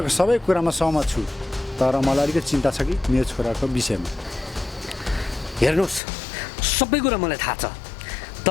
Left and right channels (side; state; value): right; drops out; at 6.0 s